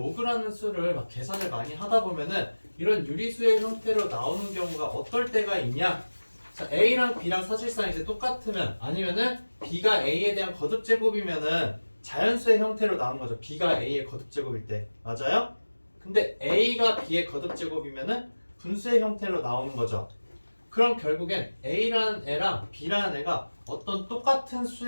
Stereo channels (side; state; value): both; inverted; correlation -1.00